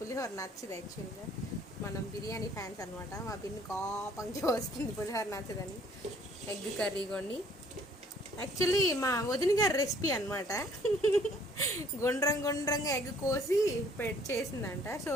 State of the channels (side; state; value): both; normal; correlation 0.60